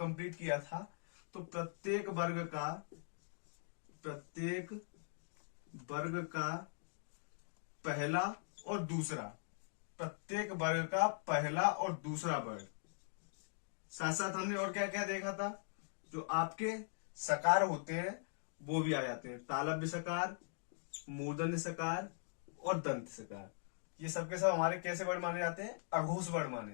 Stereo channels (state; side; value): silent; right; digital silence